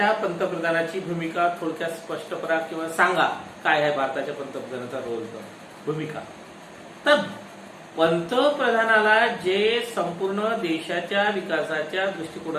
पंतप्रधानाची भूमिका थोडक्यात स्पष्ट करा किंवा सांगा काय आहे भारताच्या पंतप्रधानाचा रोल, भूमिका. तर पंतप्रधानाला जे संपूर्ण देशाच्या विकासाच्या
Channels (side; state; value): both; identical; correlation 1.00